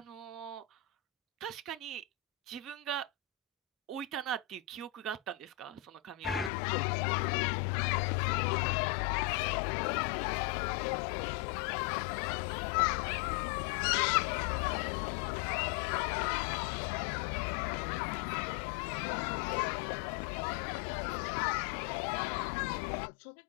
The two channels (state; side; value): drops out; right; at 6.5 s